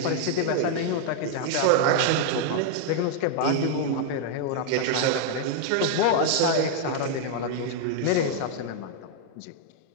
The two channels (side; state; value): both; different; correlation 0.00